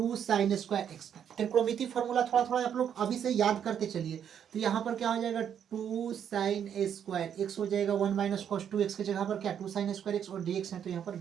साइन स्क्वायर एक्स का त्रिकोणमिति फॉर्मूला। थोड़ा थोड़ा आप लोग अभी से याद करते चलिए। तो यहाँ पर क्या हो जाएगा? 2 साइन स्क्वायर एक्स हो जाएगा, 1 माइनस कॉस 2x की जगह पर क्या 2 साइन स्क्वायर एक्स और dx है, तो यहाँ पर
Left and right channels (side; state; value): left; quieter; 8.7 dB